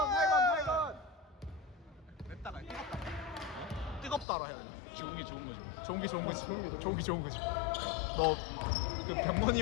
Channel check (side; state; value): right; drops out; at 4.2 s